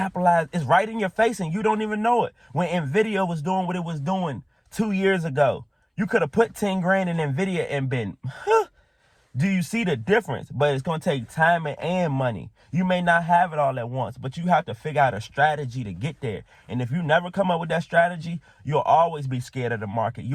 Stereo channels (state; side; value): identical; both; correlation 1.00